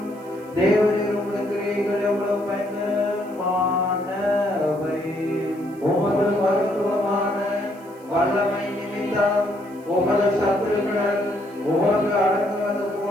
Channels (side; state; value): right; noise; hiss, 28 dB below the sound